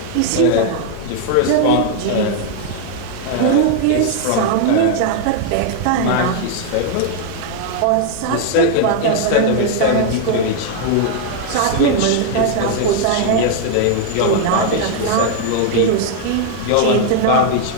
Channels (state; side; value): different; both; correlation 0.00